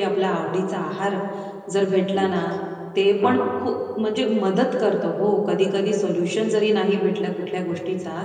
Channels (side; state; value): both; identical; correlation 1.00